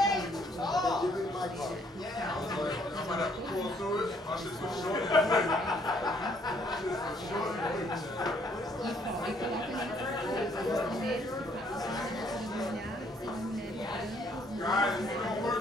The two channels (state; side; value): normal; both; correlation 0.66